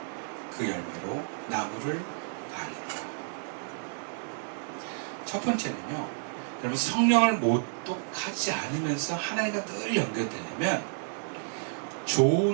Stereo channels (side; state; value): left; silent; 57 dB below the other